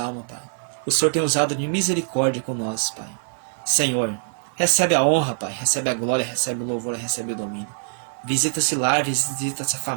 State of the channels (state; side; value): silent; left; 59 dB below the other